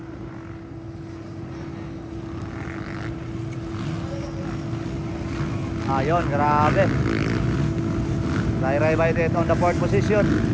Ayun, grabe. Ray Baitet on the fourth position.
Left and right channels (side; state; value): both; identical; correlation 1.00